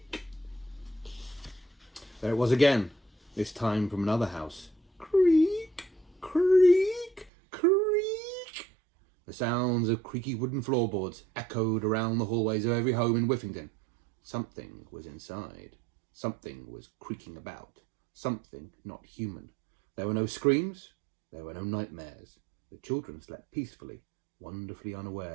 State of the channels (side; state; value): left; drops out; at 7.3 s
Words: There it was again, this time from another house. Creak, creak, creak. The sounds of creaky wooden floorboards echoed around the hallways of every home in Whiffington. Something was inside. Something was creaking about. Something not human. There were no screams. There were no nightmares. The children slept peacefully, wonderfully